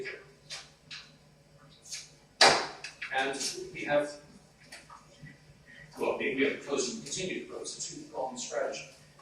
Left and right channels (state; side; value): identical; both; correlation 1.00